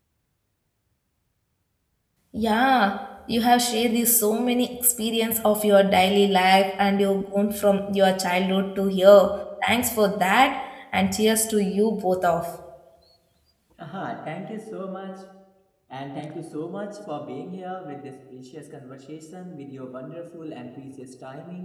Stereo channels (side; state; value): both; identical; correlation 1.00